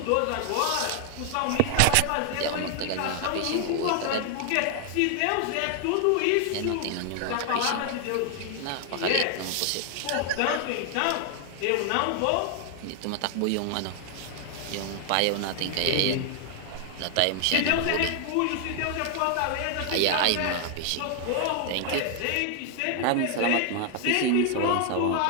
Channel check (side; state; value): both; different; correlation 0.00